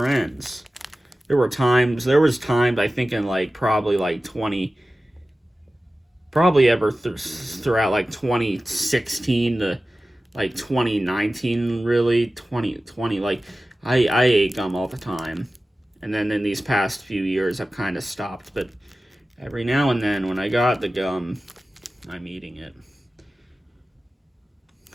ends. There was times, I think in throughout 2016 to 2019, really 2020, I ate gum all the time. And then in these past few years I've kind of stopped, but every now and then when I got the gum, I'm eating it.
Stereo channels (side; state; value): both; normal; correlation 0.95